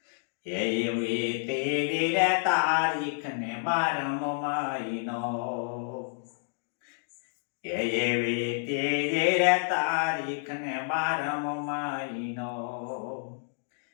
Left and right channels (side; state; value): right; silent; digital silence